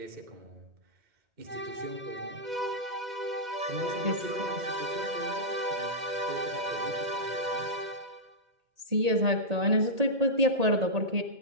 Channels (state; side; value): late; left; 1.8 ms